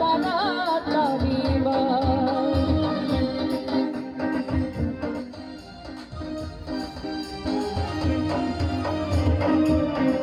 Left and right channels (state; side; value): identical; both; correlation 1.00